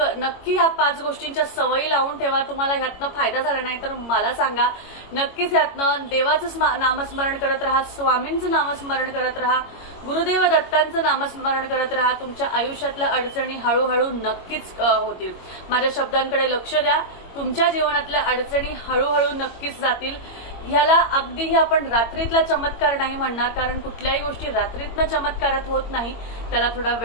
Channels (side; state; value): right; late; 22 ms